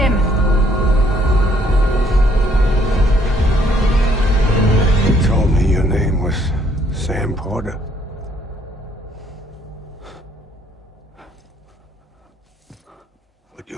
You told me your name was Sam Porter. But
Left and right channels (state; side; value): normal; both; correlation 0.66